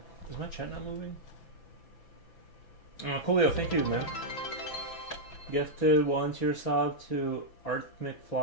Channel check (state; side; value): late; right; 6.0 ms